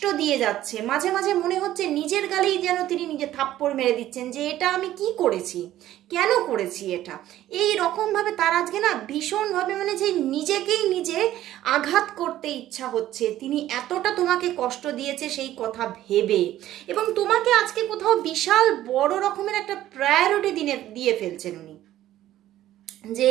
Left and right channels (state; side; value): quieter; left; 13.5 dB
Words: দিয়ে যাচ্ছে। মাঝে মাঝে মনে হচ্ছে নিজের গালেই যেন তিনি নিজে থাপ্পড় মেরে দিচ্ছেন যে এটা আমি কি করেছি, কেন করেছি এটা। এই রকমভাবে তার আজকে না ভীষণভাবে মানে যে নিজেকেই নিজে আঘাত করতে ইচ্ছা হচ্ছে, তিনি এতটা তোমাকে কষ্ট দিয়েছে সেই কথা ভেবে, এবং তোমাকে আজকে কোথাও বিশাল বড় রকমের একটা প্রায়োরিটি দিয়ে ফেলছেন উনি, যে